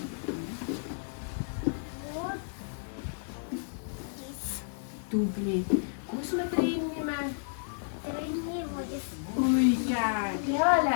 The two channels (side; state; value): right; silent; digital silence